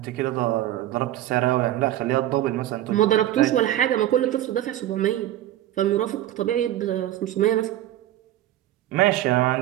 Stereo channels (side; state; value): left; quieter; 13.5 dB